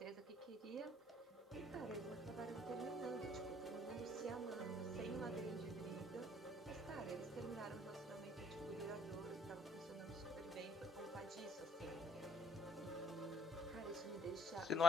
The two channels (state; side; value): normal; both; correlation 0.62